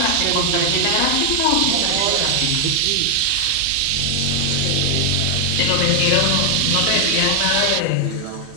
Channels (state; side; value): different; both; correlation 0.00